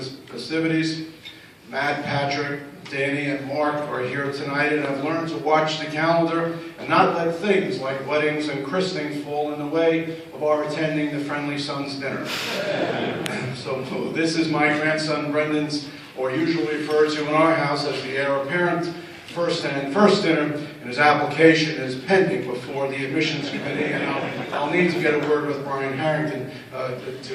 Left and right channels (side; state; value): both; identical; correlation 1.00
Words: festivities. Matt, Patrick, Danny, and Mark are here tonight, and I've learned to watch the calendar and not let things like weddings and christenings fall in the way of our attending the Friendly Sons dinner. So this is my grandson Brendan's, or usually referred to in our house as the heir apparent, first dinner, and his application is pending before the admissions committee, and I'll need to get a word with Brian Harrington